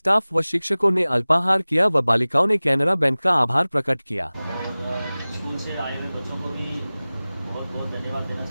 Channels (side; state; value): both; inverted; correlation -0.99